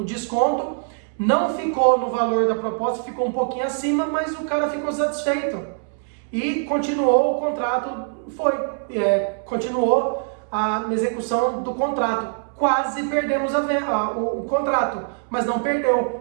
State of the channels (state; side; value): silent; left; 64 dB below the other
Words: desconto, não ficou no valor da proposta, ficou um pouquinho acima, mas o cara ficou satisfeito. E continuou o contrato, continuou a execução do contrato. Quase perdemos o contrato, mas não